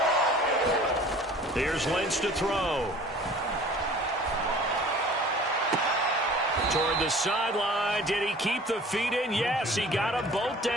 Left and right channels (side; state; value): both; normal; correlation 0.47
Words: Here's Lynch to throw. Toward the sideline. Did he keep the feet in? Yes, he got them both